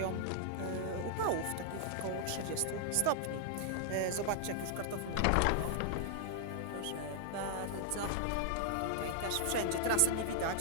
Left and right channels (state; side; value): different; both; correlation -0.01